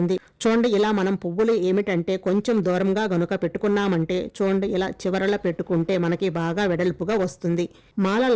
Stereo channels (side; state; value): both; identical; correlation 1.00